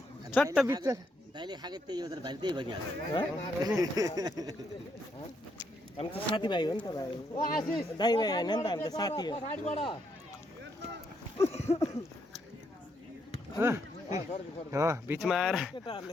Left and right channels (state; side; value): normal; both; correlation 0.76